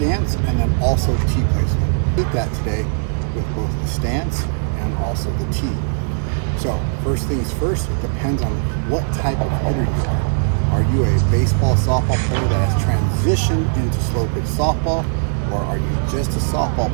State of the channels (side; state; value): left; silent; 66 dB below the other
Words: and then also tee placement. We'll that today with both the stance and also the tee. So first things first, it depends on what type of hitter you are. Are you a baseball, softball player that has transitioned into slow pitch softball, or are you just a softball